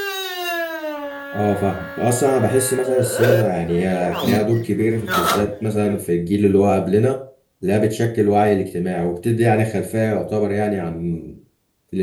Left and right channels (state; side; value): identical; both; correlation 1.00